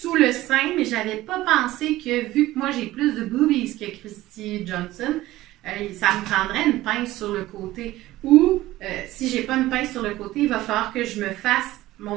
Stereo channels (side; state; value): left; quieter; 16.5 dB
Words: le sein, mais j'avais pas pensé que, vu que moi, j'ai plus de boobies que Christy Johnson, ça me prendrait une pince sur le côté. Ou, si j'ai pas une pince sur le côté, il va falloir que je me fasse